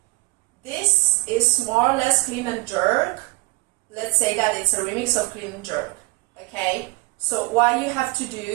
This is more or less clean and jerk. Let's say that it's a remix of clean and jerk. Okay? So what you have to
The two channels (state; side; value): quieter; left; 26.9 dB